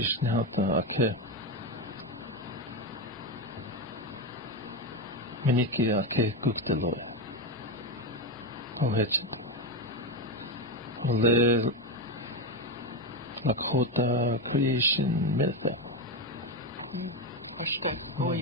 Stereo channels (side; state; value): both; normal; correlation 0.12